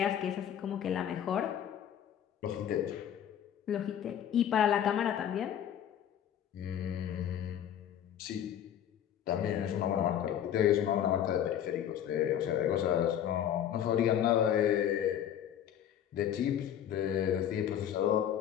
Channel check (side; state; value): right; quieter; 10.0 dB